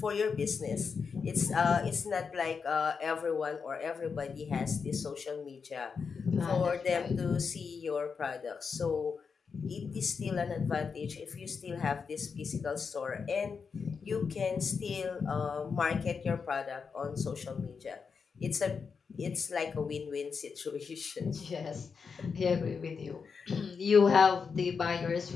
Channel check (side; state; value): right; quieter; 5.6 dB